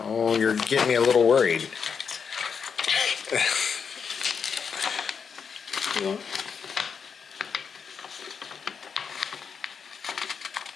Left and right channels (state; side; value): quieter; right; 6.3 dB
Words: Oh, you're getting me a little worried. Yeah.